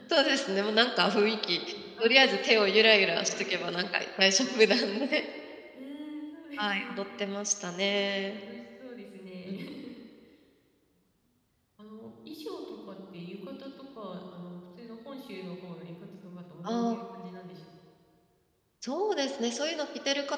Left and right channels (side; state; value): both; identical; correlation 1.00